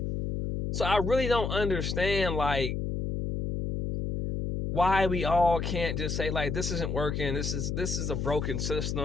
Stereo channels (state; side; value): noise; left; hum, 1 dB below the sound